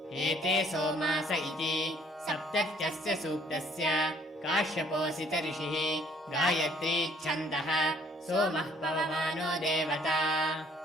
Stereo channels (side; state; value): both; normal; correlation 0.60